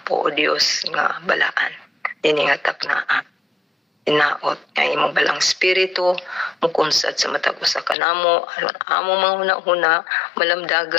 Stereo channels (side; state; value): right; drops out; at 8.0 s